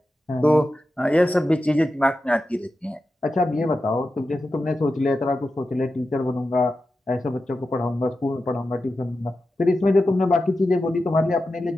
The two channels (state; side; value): normal; both; correlation 0.91